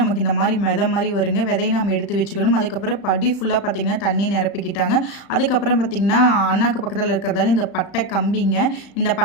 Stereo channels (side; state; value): right; late; 35 ms